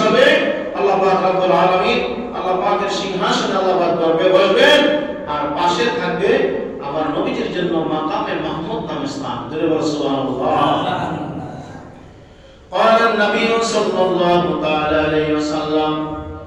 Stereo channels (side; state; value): both; identical; correlation 1.00